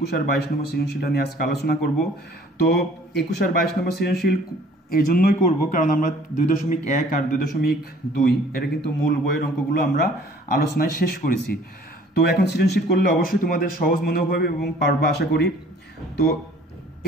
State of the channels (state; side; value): normal; both; correlation 0.54